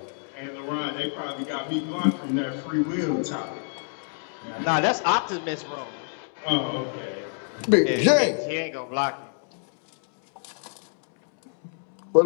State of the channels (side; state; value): right; silent; 60 dB below the other